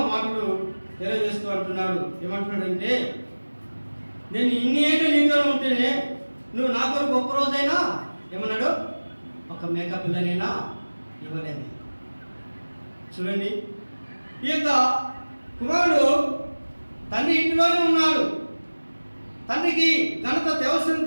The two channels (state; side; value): inverted; both; correlation -1.00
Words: మాటలు తెలియజేస్తూ అంటున్నాడు. ఏమంటున్నాడంటే, నేను ఇన్ని ఏళ్ళు నీతో ఉంటేనే నువ్వు నా కొరకు ఒక్క రోజైనా ఏమన్నాడు, ఒక మేక పిల్లనైనా ఇవ్వలేదు. చూడండి, ఈ యొక్క కుమారుడు తండ్రి ఇంటిలోనే ఉన్నాడు. తండ్రికి ఘనత